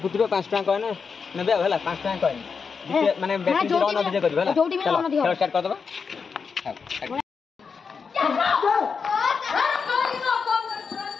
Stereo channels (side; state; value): right; quieter; 5.6 dB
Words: 5 टका कॉइन ने 5 टका कॉइन माने रन अधे कर चलो खेल स्टार्ट कर दबा